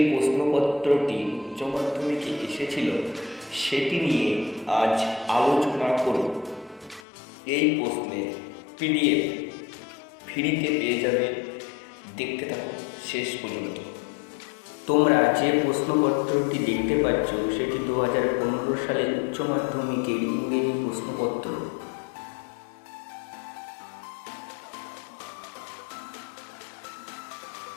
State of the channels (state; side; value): drops out; right; at 7.0 s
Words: প্রশ্নপত্রটি উচ্চ মাধ্যমিকে এসেছিল সেটি নিয়ে আজ আলোচনা করব। এই প্রশ্নের পিডিএফ ফ্রিতে পেয়ে যাবে, দেখতে থাকো শেষ পর্যন্ত। তোমরা যে প্রশ্নপত্রটি দেখতে পাচ্ছ সেটি 2015 সালের উচ্চ মাধ্যমিকের ইংরেজি প্রশ্নপত্র।